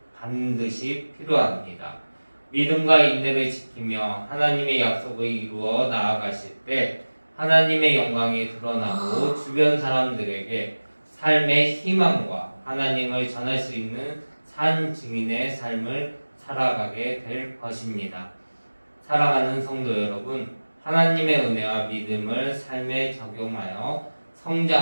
반드시 필요합니다. 믿음과 인내를 지키며 하나님의 약속을 이루어 나아가실 때 하나님의 영광이 드러나고 주변 사람들에게 삶의 희망과 하나님을 전할 수 있는 산 증인의 삶을 살아가게 될 것입니다. 사랑하는 성도 여러분, 하나님의 은혜와 믿음을 삶에 적용하여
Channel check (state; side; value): inverted; both; correlation -1.00